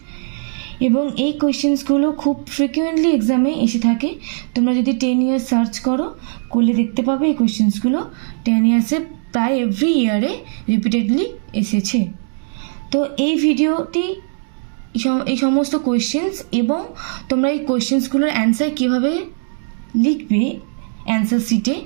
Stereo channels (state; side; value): silent; left; digital silence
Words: এবং এই কোয়েশ্চেন্সগুলো খুব ফ্রিকুয়েন্টলি এক্সামে এসে থাকে। তোমরা যদি 10 ইয়ার্স সার্চ করলে দেখতে পাবে এই কোয়েশ্চেন্সগুলো 10 ইয়ার্সে প্রায় এভরি ইয়ারে রিপিটেডলি এসেছে। তো এই ভিডিওটি এই সমস্ত কোয়েশ্চেন্স এবং তোমরা এই কোয়েশ্চেন্সগুলোর অ্যান্সার কীভাবে লিখবে অ্যান্সার শিটে